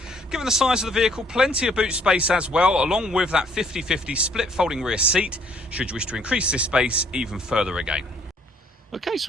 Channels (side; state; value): both; normal; correlation 0.63